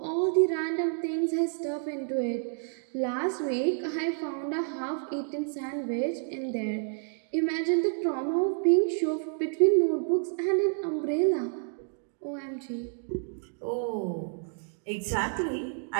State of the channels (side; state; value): left; silent; 58 dB below the other